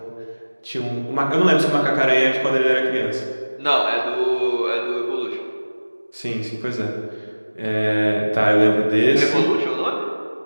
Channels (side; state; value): both; inverted; correlation -1.00